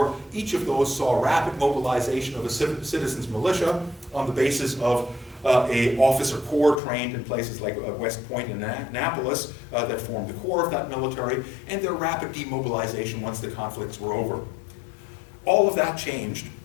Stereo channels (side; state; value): right; drops out; at 6.8 s